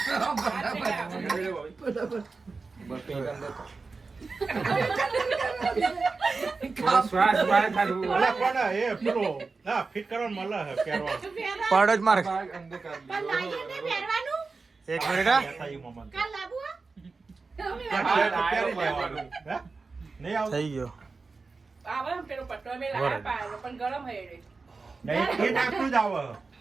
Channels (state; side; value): quieter; left; 4.2 dB